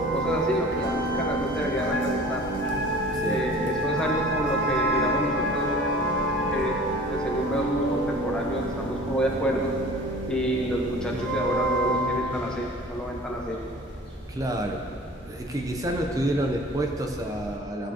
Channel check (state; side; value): normal; both; correlation 0.45